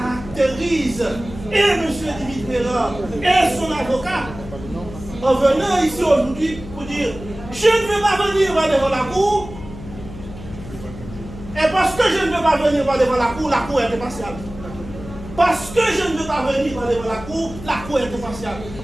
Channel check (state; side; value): noise; left; hum, 14 dB below the sound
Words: et M. Dimitrieva et son avocat en venant ici aujourd'hui pour dire je ne veux pas venir devant la cour, et parce que je ne veux pas venir devant la cour est impartiale. Parce que je ne veux pas venir devant la cour est impartiale.